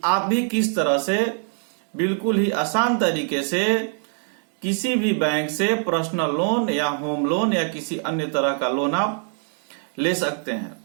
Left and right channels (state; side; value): silent; left; 63 dB below the other